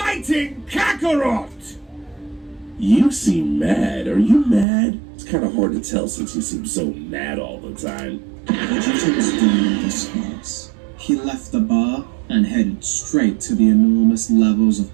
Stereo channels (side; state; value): left; drops out; at 4.7 s